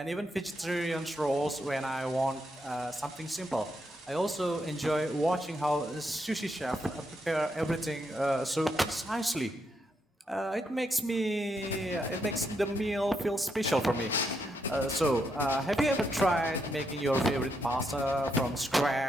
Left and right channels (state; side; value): normal; both; correlation 0.80